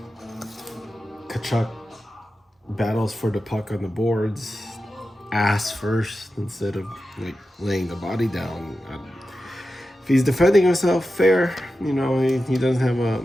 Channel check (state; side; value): normal; both; correlation 0.92